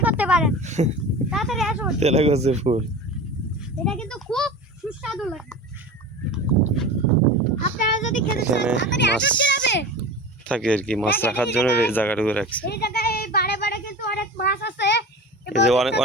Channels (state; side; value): normal; both; correlation 0.33